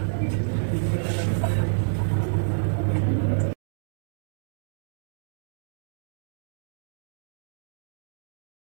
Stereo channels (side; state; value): left; silent; digital silence